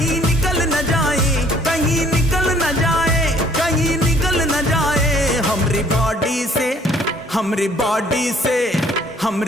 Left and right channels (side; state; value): both; normal; correlation 0.59